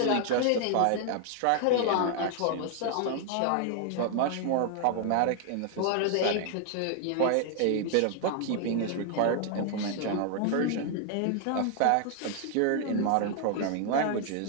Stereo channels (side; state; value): both; different; correlation 0.00